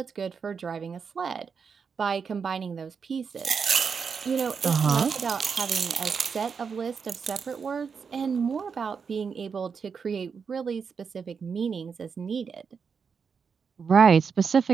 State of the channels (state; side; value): quieter; left; 6.0 dB